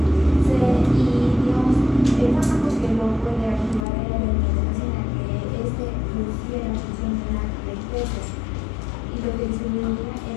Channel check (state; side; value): drops out; right; at 3.9 s